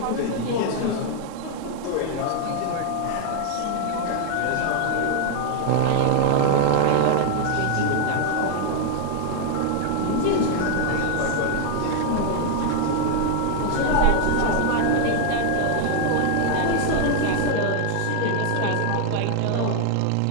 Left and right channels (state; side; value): different; both; correlation 0.00